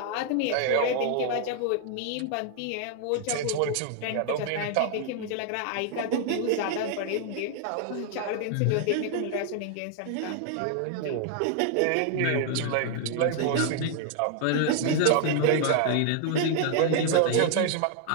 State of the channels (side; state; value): both; different; correlation 0.00